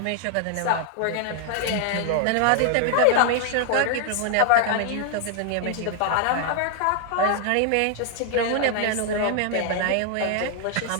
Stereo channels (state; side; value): different; both; correlation 0.00